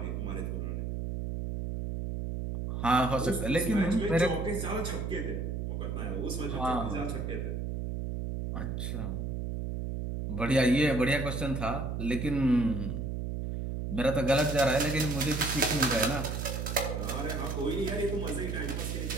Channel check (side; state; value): right; noise; hum, 3 dB below the sound